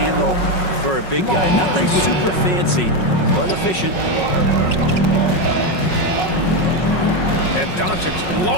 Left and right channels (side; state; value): right; late; 5.4 ms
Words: for a big guy. Nothing super fancy, but efficient. And Doncic